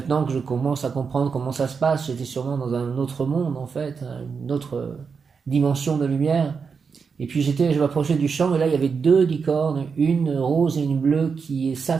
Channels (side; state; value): left; quieter; 5.6 dB